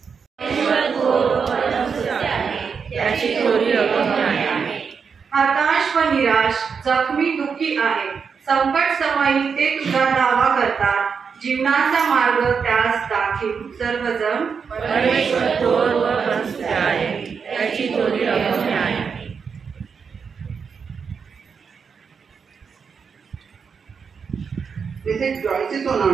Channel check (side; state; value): left; quieter; 6.0 dB